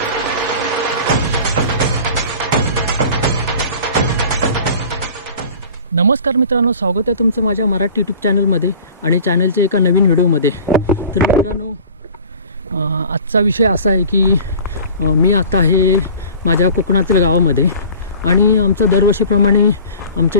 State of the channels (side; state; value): both; inverted; correlation -0.42